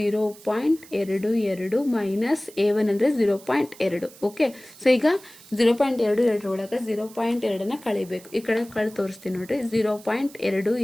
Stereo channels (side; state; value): right; noise; hiss, 21 dB below the sound